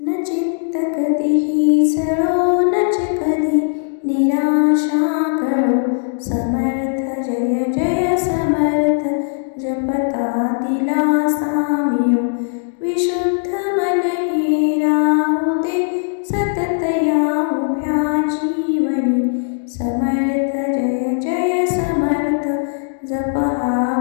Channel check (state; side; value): silent; right; digital silence